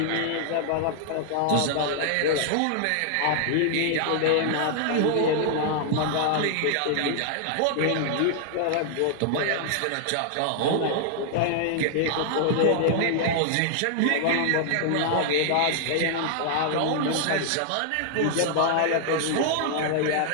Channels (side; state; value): both; different; correlation -0.01